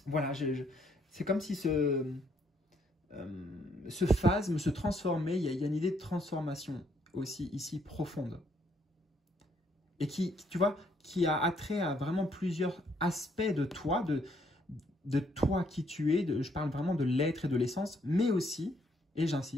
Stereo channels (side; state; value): both; normal; correlation 0.70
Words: voilà, c'est comme si ce phasme se transformait, il y a une idée de transformation aussi ici profonde. Et qui, tu vois, qui a attrait à vraiment plusieurs aspects de toi, de toi qui tu es, je parle vraiment de l'être et de l'essence, mais aussi, et